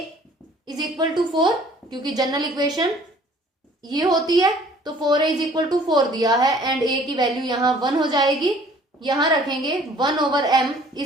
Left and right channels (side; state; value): both; normal; correlation 0.54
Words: इज इक्वल टू 4 क्योंकि जनरल इक्वेशन ये होती है तो 4a इज इक्वल टू 4 दिया है एंड a की वैल्यू यहां 1 हो जाएगी। यहां रखेंगे 1/m